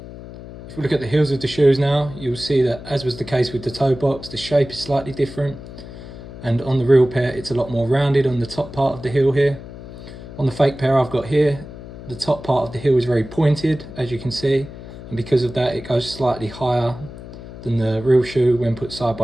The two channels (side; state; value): left; noise; hum, 14 dB below the sound